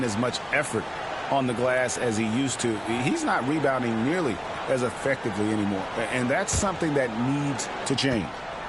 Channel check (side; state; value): both; identical; correlation 1.00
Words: as much effort on the glass as he used to, he's not rebounding nearly as effectively anymore. And that's something that needs to change.